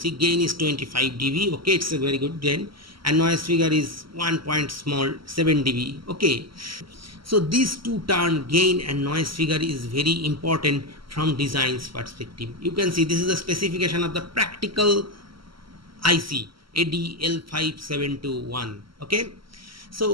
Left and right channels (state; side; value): late; left; 0.74 ms